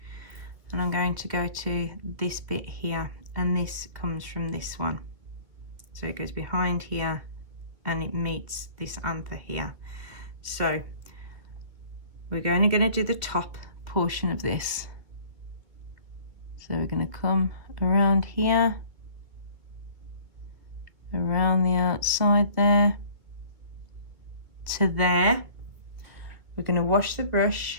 and I'm going to go to this bit here, and this comes from this one. So it goes behind here and it meets this anther here. So we're only going to do the top portion of this. So we're going to come around here, around the outside there, to there. We're going to wash the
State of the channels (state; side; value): late; left; 2.5 ms